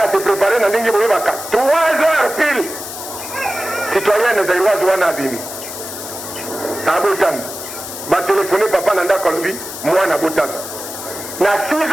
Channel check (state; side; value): noise; left; hiss, 9 dB below the sound